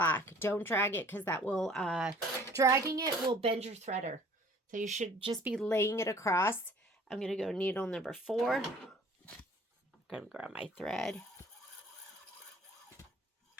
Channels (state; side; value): normal; both; correlation 0.53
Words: Don't drag it because that will, dragging it will bend your threader. So you should just be laying it across. I'm going to go needle number 4. I'm going to grab my thread.